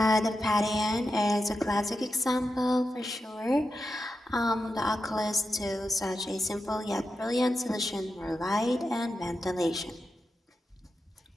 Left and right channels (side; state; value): both; normal; correlation 0.89